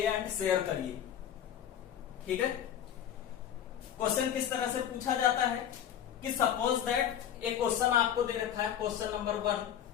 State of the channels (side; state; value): right; quieter; 9.9 dB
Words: एंड शेयर करिए। ठीक है। क्वेश्चन किस तरह से पूछा जाता है कि सपोज दैट एक क्वेश्चन आपको दे रखा है, क्वेश्चन नंबर 1